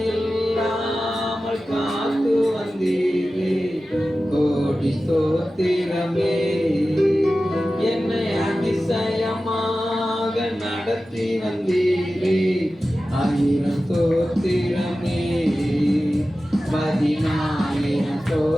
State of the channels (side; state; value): both; normal; correlation 0.94